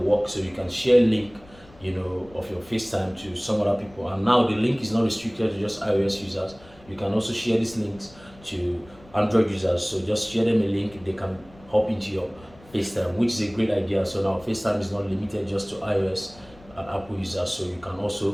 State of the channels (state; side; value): noise; left; rumble, 24 dB below the sound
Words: So you can share link of your FaceTime to some other people. And now the link is not restricted to just iOS users. You can also share these links to Android users. So just share them a link, they can hop into your FaceTime, which is a great idea. So now FaceTime is not limited just to iOS and Apple users. So you can